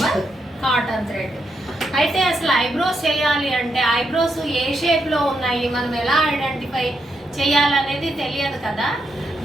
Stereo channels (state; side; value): normal; both; correlation 0.81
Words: కాటన్ థ్రెడ్. అయితే అసలు ఐబ్రోస్ చేయాలి అంటే ఐబ్రోస్ ఏ షేప్లో ఉన్నాయి, మనం ఎలా ఐడెంటిఫై చేయాలనేది తెలియదు కదా.